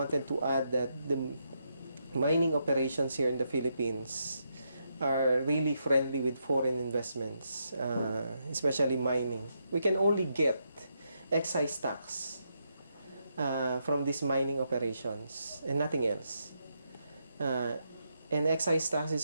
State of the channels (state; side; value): inverted; both; correlation -0.80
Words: to add that the mining operations here in the Philippines are really friendly with foreign investments, especially mining. We can only get excise tax from these mining operations and nothing else. And excise tax